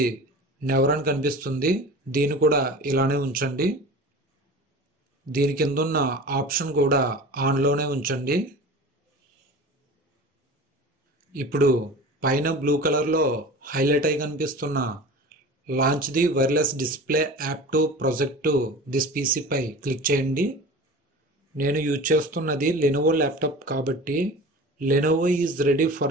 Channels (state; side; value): normal; both; correlation 0.37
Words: నెవర్ అని కనిపిస్తుంది. దీన్ని కూడా ఇలానే ఉంచండి. దీని కింద ఉన్న ఆప్షన్ కూడా ఆన్లోనే ఉంచండి. ఇప్పుడు పైన బ్లూ కలర్లో హైలైట్ అయి కనిపిస్తున్న launch the wireless display app to project to this పీసీపై క్లిక్ చేయండి. నేను యూజ్ చేస్తున్నది లెనోవో ల్యాప్టాప్ కాబట్టి Lenovo is ready